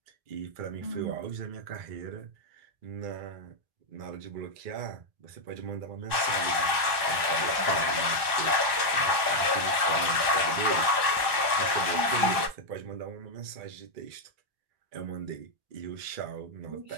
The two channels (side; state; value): left; late; 1.2 ms